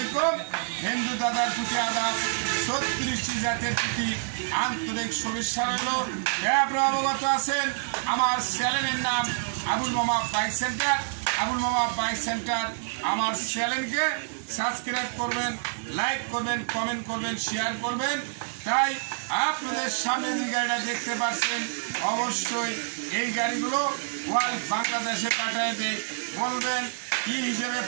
হিন্দু দাদার প্রতি আদাব, 36টি জাতের প্রতি আন্তরিক শুভেচ্ছা রইল। আপনারা অবগত আছেন আমার চ্যানেলের নাম আবুল মামা বাইক সেন্টার। আবুল মামা বাইক সেন্টার আমার চ্যানেলকে সাবস্ক্রাইব করবেন, লাইক করবেন, কমেন্ট করবেন, শেয়ার করবেন। তাই আপনাদের সামনে যে গাড়িটা দেখতে পাচ্ছেন, অবশ্যই এই গাড়িগুলো ওয়াল বাংলাদেশে পাঠিয়ে দেয়। বলবেন কি হিসেবে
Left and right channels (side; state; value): left; silent; digital silence